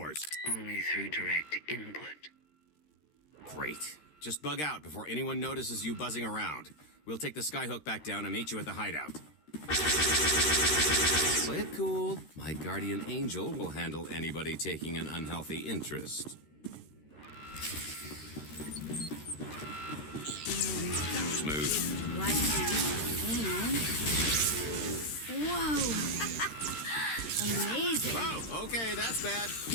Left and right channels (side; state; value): right; late; 13 ms